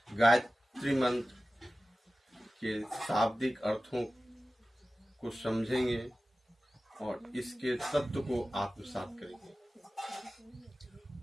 गायत्री मंत्र के शाब्दिक अर्थों को समझेंगे और इसके तत्व को आत्मसात करेंगे।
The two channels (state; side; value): normal; both; correlation 0.96